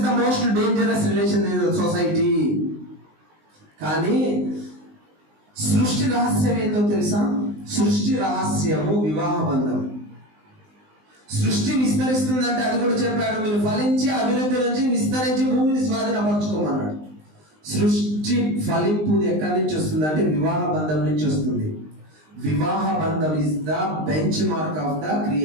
the most dangerous relation in society. కానీ సృష్టి రహస్యం ఏంటో తెలుసా? సృష్టి రహస్యము వివాహ బంధం. సృష్టి విస్తరిస్తుందంటే అది కూడా చెప్పాడు, మీరు ఫలించి అభివృద్ధి నుంచి విస్తరించి భూమిని స్వాధీనపరచుకోమన్నాడు. సృష్టి ఫలింపు ఎక్కడి నుంచి వస్తుంది అంటే వివాహ బంధం నుంచి వస్తుంది. వివాహ బంధం is the bench mark of the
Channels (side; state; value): left; late; 19 ms